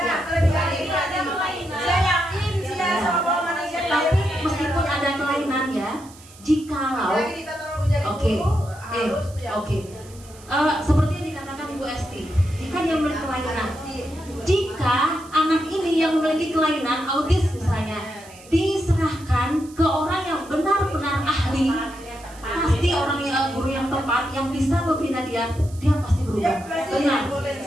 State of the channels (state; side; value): noise; right; hiss, 22 dB below the sound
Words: Ya. kelebihan itu ada kelainan. Saya yakin dia sama manusia. Tapi meskipun ada kelainan ya, jikalau Lagi kita tolong menjadi Oke, guru harus ya. oke. Seperti yang dikatakan Ibu Esti, jika dia memiliki kelainan, jika anak ini yang memiliki kelainan autis misalnya, diserahkan ke orang yang benar-benar ahli, pasti orang yang guru yang tepat yang bisa membina dia pasti berubah. Tenang,